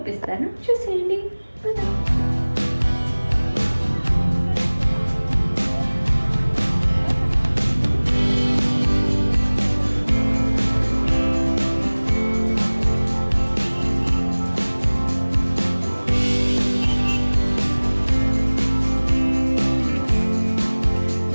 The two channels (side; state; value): both; inverted; correlation -1.00